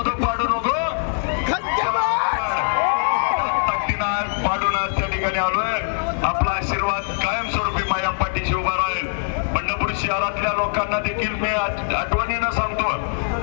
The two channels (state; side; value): silent; right; digital silence